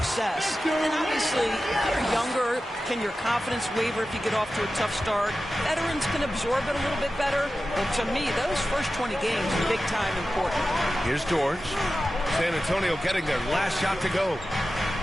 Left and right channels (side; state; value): both; normal; correlation 0.93